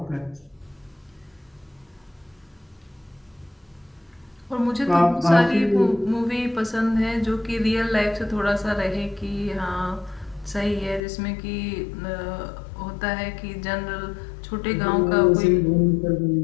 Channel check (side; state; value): right; drops out; at 11.0 s